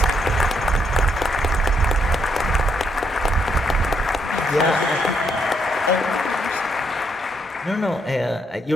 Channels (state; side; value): normal; both; correlation 0.75